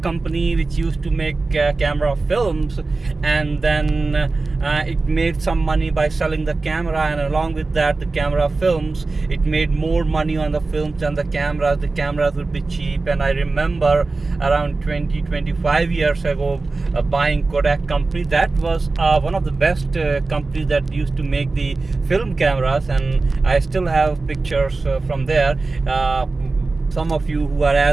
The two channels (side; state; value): left; quieter; 3.6 dB